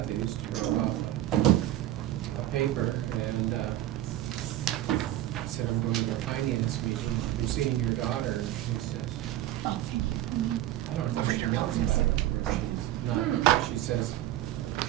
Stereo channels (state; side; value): quieter; left; 13.8 dB